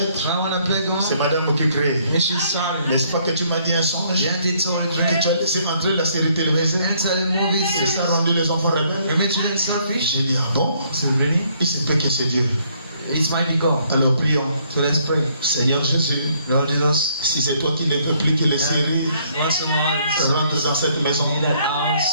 When I wanna plug c'est on, madame qui crée. and she's sorry. N'est-ce pas que tu m'as dit un songe? Then they told her Que tu as laissé entrer la série télévisée? enter the movie. C'est ça rendu les enfants rebelles? You made them selfish. J'ai dit, ah bon? So really, Il se peut que c'est Dieu. it's mighty God. Alors prions. So let's pray. Seigneur Jésus, Lord Jesus, si c'est toi qui ne veux plus que les séries once in a while, rentrent dans cette maison, in that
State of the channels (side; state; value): both; inverted; correlation -0.67